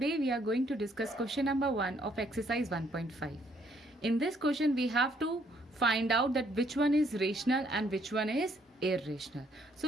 we are going to discuss question number 1 of exercise 1.5. In this question we have to find out that which one is rational and which one is irrational. So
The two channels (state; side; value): normal; both; correlation 0.68